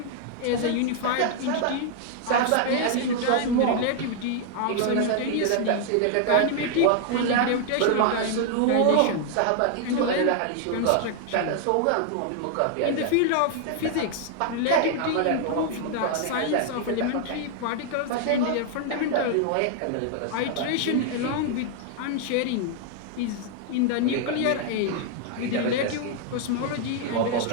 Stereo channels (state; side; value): different; both; correlation 0.00